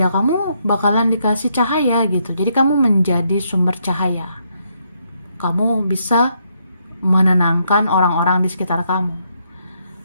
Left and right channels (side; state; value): both; inverted; correlation -0.76